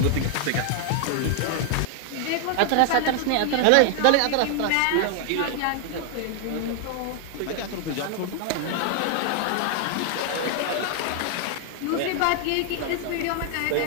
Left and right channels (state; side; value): different; both; correlation 0.00